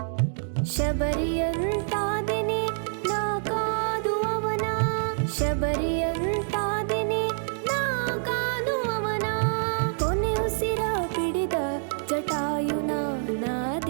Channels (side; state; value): left; silent; digital silence